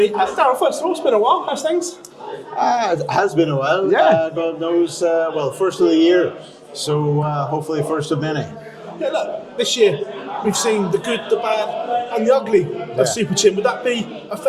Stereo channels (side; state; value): both; identical; correlation 1.00